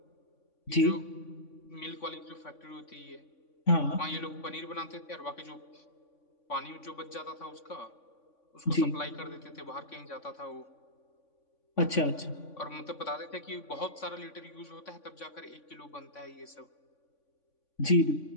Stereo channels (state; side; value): late; right; 3.5 ms